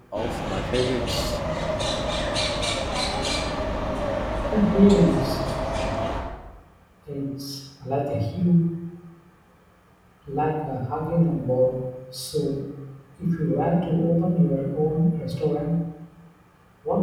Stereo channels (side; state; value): both; identical; correlation 1.00